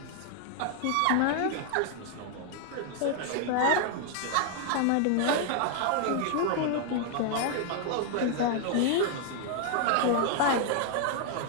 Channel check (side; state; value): both; different; correlation 0.00